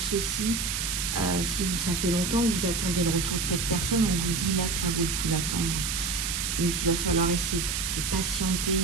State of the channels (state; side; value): noise; right; hiss, 1 dB below the sound